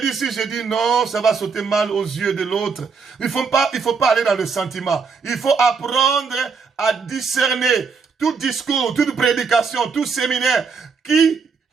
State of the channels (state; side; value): quieter; left; 5.4 dB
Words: dis, si je dis non, ça va sauter mal aux yeux de l'autre. Il faut pas aller dans le sentiment. Il faut apprendre à discerner tout discours, toute prédication, tout séminaire qui